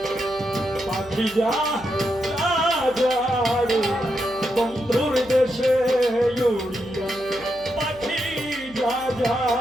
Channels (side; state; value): right; noise; hum, 22 dB below the sound